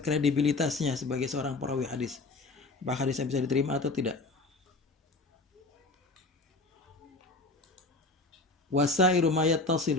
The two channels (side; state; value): right; quieter; 3.3 dB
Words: kredibilitasnya sebagai seorang perawi hadis. Apakah hadisnya bisa diterima atau tidak. Wasairu ma